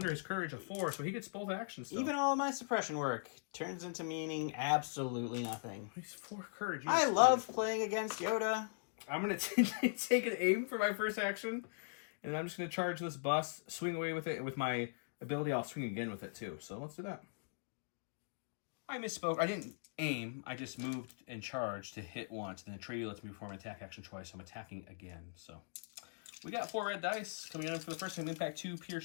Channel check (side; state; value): right; silent; digital silence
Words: his courage of 4, so he gets both actions still. Even all of my suppression work turns into meaning absolutely nothing. He's 4 courage. I love playing against Yoda. I'm going to take an aim for my first action, and then I'm just going to charge this bus, swing away with it, and with my ability, I'll swing again with it too. So let's do that. I misspoke. I didn't aim. I just moved and charged to hit once. Then the trade lets me perform an attack action twice, so I'm attacking again. So we got 4 red dice coming in for the first time. Impact 2,